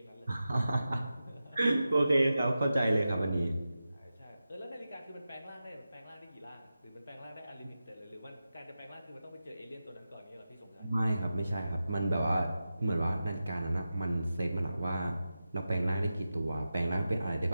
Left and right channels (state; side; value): inverted; both; correlation -0.92